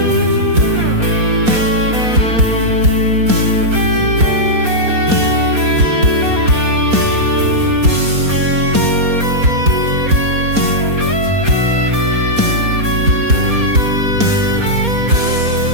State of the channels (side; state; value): left; late; 4.2 ms